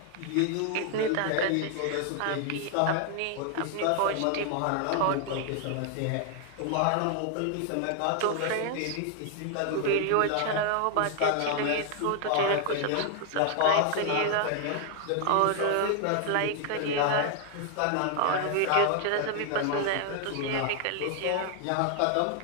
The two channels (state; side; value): different; both; correlation 0.00